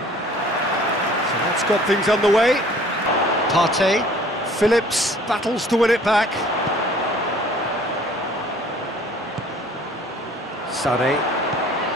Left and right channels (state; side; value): normal; both; correlation 0.52